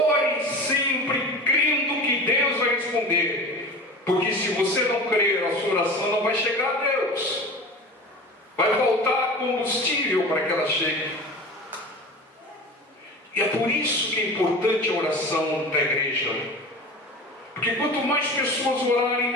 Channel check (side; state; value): both; normal; correlation 0.34